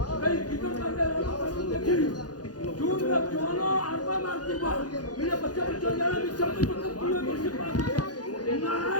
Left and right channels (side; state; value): right; late; 0.69 ms